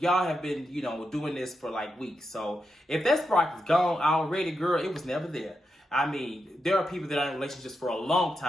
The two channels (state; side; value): normal; both; correlation 0.86